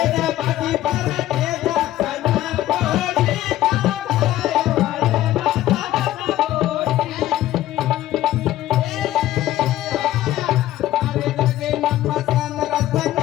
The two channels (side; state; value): right; quieter; 14.3 dB